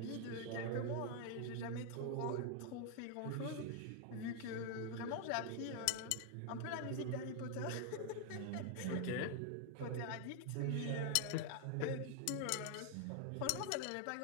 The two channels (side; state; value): both; different; correlation 0.00